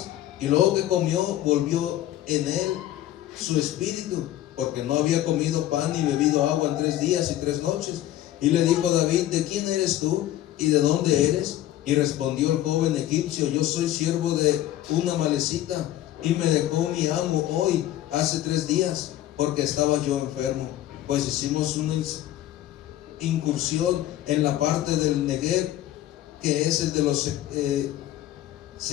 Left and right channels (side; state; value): right; quieter; 13.5 dB